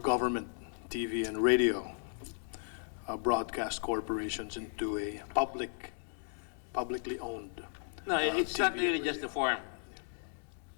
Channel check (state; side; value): silent; right; digital silence